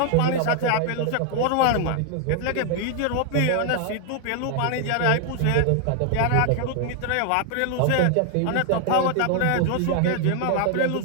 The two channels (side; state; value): both; different; correlation 0.00